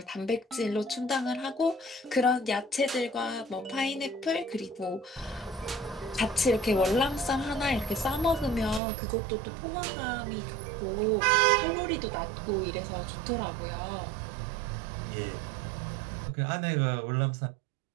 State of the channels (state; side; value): drops out; left; at 8.8 s